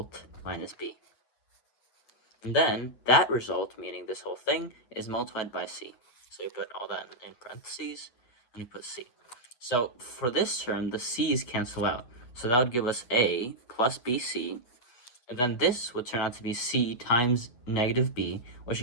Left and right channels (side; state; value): right; late; 8.7 ms